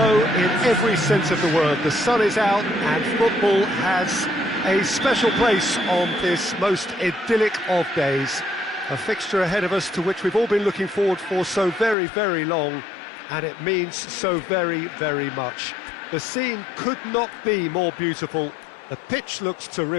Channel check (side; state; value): right; drops out; at 12.0 s